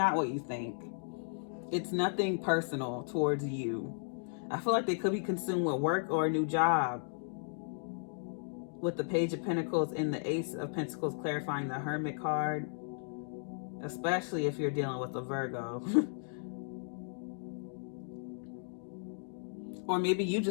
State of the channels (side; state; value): right; silent; digital silence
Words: what you think. It's nothing personal towards you. I feel like they could be consumed with work or a new job. With the Page of Pentacles and the Ace of Pentacles clarifying the Hermit card. Especially if you're dealing with a Virgo. Or maybe you